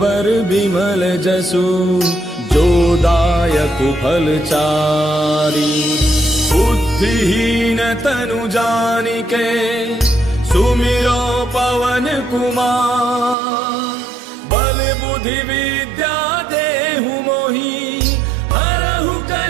बिमल जसु जो दायक फल चारि बुद्धिहीन तनु जानिके सुमिरो पवन कुमार बल बुद्धि विद्या देहु मोहि हरहु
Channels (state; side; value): drops out; left; at 13.4 s